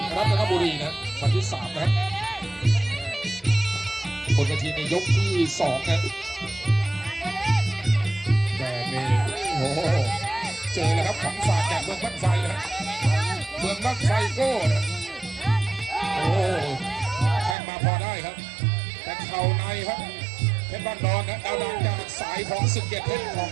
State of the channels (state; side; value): drops out; left; at 17.6 s